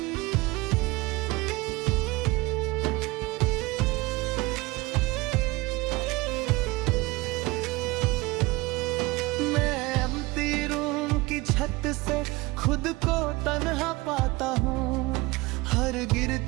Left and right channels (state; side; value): quieter; left; 22.3 dB